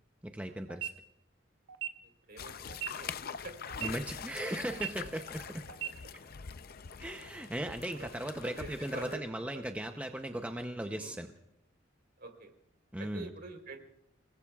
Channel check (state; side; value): normal; both; correlation 0.58